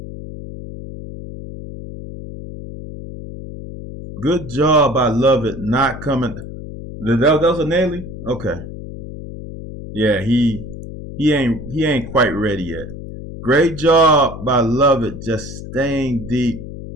Good job by Lovett not coming. That was a Naily? Okay. Yeah, he ain't quite ready yet. Great job by Lovett just staying deep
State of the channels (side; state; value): left; noise; hum, 11 dB below the sound